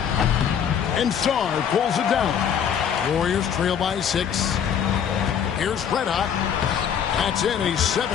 And Sarr pulls it down. Warriors trail by 6. Here's Red Hot. That's in, and he's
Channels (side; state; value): right; quieter; 8.2 dB